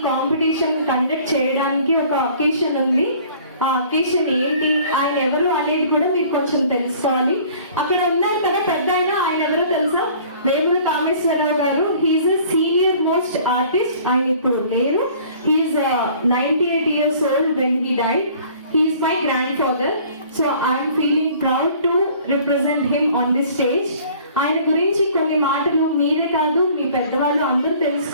కాంపిటీషన్ కండక్ట్ చేయడానికి ఒక ఒకేషన్ ఉంది. ఆ అకేషన్ ఏంటి, ఆయన ఎవరు అనేది కూడా మీరు కొంచెం తెలుసుకోవాలి. అక్కడ ఉన్నారు కదా పెద్ద ఆయన ఎవరో తెలుసా? వేముల కామేశ్వరరావు గారు. He's a senior most artist. ఆయన ఇప్పుడు లేరు. He's 98 years old when he died. He is my grandfather. So I am feeling proud to represent him on this stage. ఆయన గురించి కొన్ని మాటలు మీరే కాదు మీ పెద్దవాళ్ళు అందరూ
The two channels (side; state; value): both; inverted; correlation -0.51